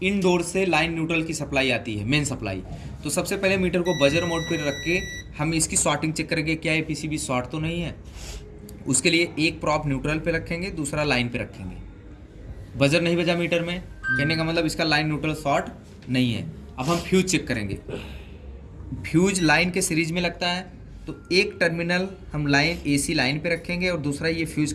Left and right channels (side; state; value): both; identical; correlation 1.00